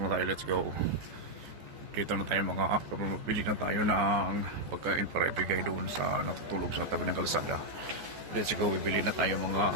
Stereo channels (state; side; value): late; left; 14 ms